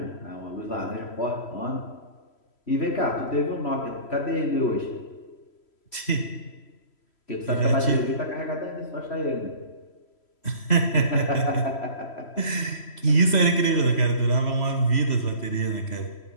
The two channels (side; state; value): right; late; 3.1 ms